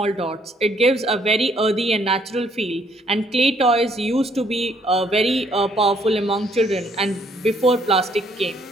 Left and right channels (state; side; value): normal; both; correlation 0.66